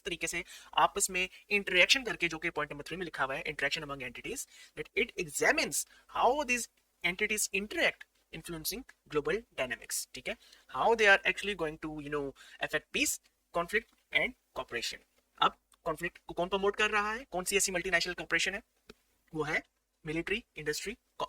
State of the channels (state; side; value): identical; both; correlation 1.00